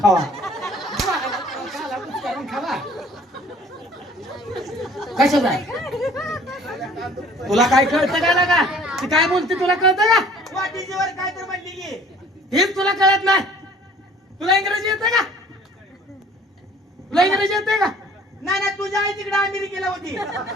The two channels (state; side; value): normal; both; correlation 0.53